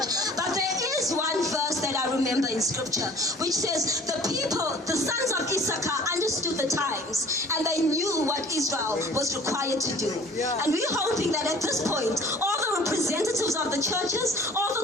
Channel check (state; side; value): normal; both; correlation 0.49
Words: but there is one verse that I remember in scripture which says the people, the sons of Issachar, understood the times and they knew what Israel was required to do. And we're hoping that at this point all the representatives of the churches, all